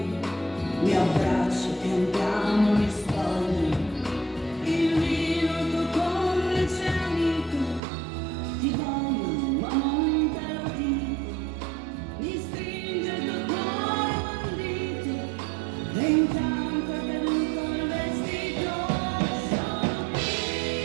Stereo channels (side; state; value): left; drops out; at 7.8 s